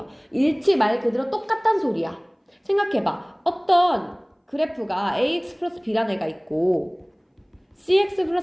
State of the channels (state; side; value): identical; both; correlation 1.00